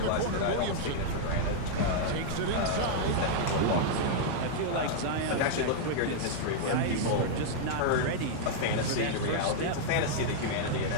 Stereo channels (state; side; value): different; both; correlation -0.01